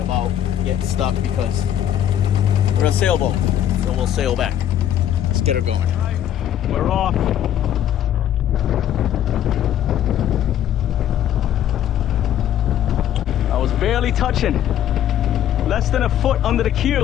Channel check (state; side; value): quieter; right; 10.9 dB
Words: about getting stuck because we're a sailboat, so we'll sail back. Let's get her going. All right, we're off. I was barely touching, less than a foot under the